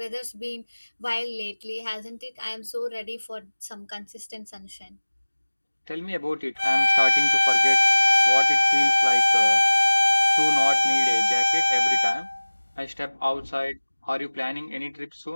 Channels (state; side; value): inverted; both; correlation -1.00